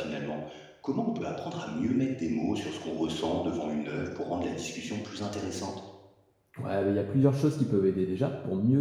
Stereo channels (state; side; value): identical; both; correlation 1.00